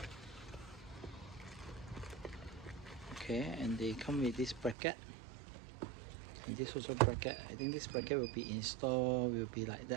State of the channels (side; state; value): left; drops out; at 4.8 s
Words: Okay, and they come with this bracket, and this also bracket. I think this bracket will be installed, will be like